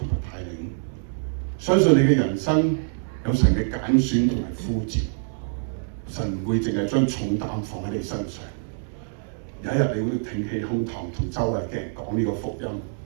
埋帶領，相信你嘅人生有神嘅揀選同埋呼召。神唔會淨係將重擔放喺你身上，有一日你會挺起胸膛同周圍嘅人講呢個福音。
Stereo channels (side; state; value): left; silent; 62 dB below the other